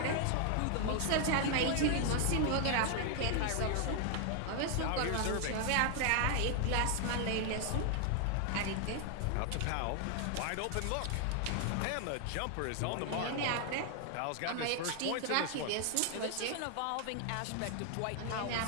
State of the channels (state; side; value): different; both; correlation 0.00